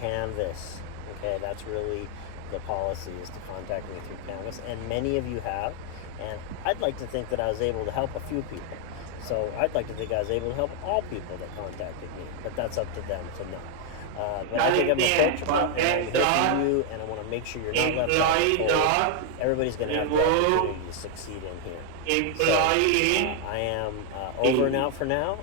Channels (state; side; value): different; both; correlation 0.00